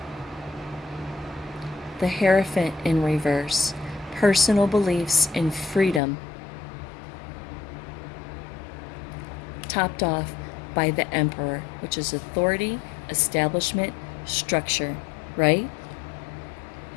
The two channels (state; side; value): drops out; right; at 6.0 s